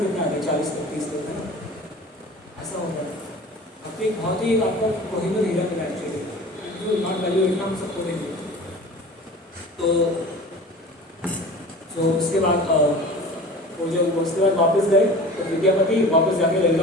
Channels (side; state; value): both; normal; correlation 0.39